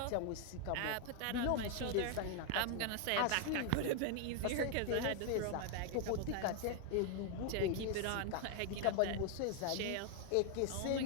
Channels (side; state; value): both; different; correlation 0.00